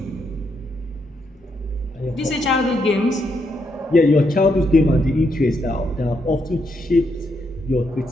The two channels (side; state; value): both; normal; correlation 0.78